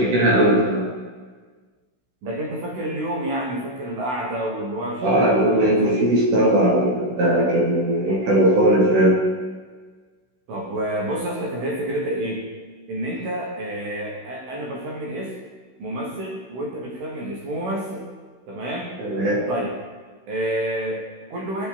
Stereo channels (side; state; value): left; late; 16 ms